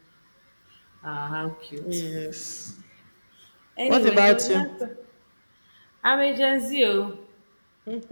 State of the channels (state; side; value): inverted; both; correlation -1.00